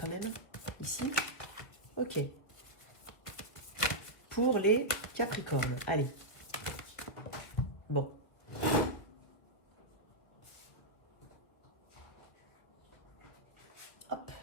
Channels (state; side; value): late; right; 1.9 ms